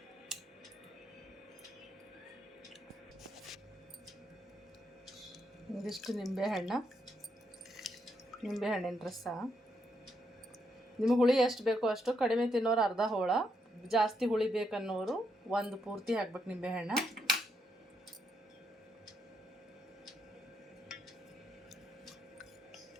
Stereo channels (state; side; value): normal; both; correlation 0.78